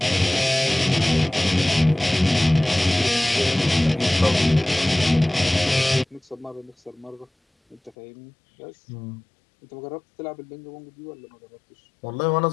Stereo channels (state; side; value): drops out; right; at 8.0 s